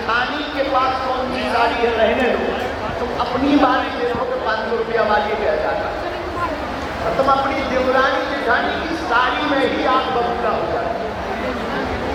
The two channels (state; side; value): identical; both; correlation 1.00